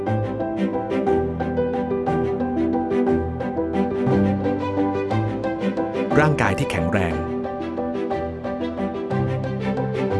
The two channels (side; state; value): both; identical; correlation 1.00